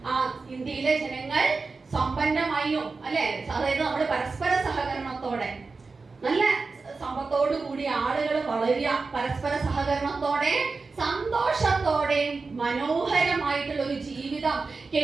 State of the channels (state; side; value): quieter; left; 4.2 dB